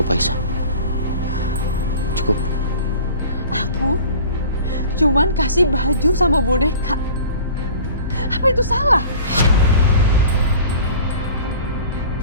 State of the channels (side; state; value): both; inverted; correlation -0.42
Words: Aisyah. Cukup. Aku cuman kasih baju sama boneka. Apa itu salah?